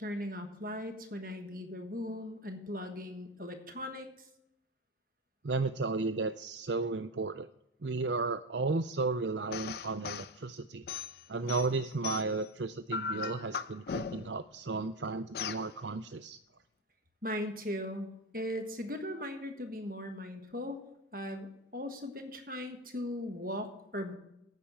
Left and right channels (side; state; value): both; normal; correlation 0.17